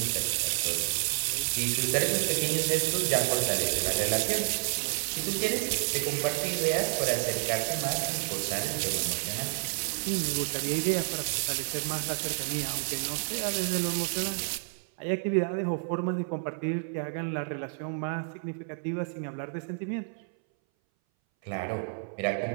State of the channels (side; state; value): left; silent; 58 dB below the other